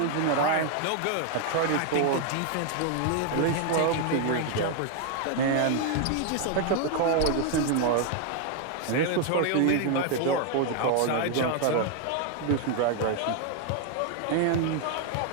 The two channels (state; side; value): different; both; correlation 0.00